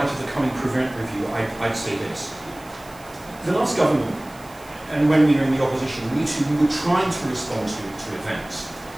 of the coming Prevent review, I'd say this. The last government, and when we were in the opposition, we were trying to respond to events.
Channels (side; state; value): right; noise; hiss, 23 dB below the sound